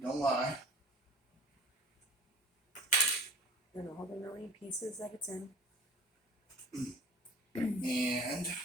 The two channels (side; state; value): both; normal; correlation 0.44